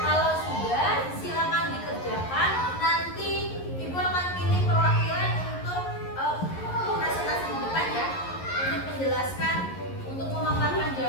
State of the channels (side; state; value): right; late; 11 ms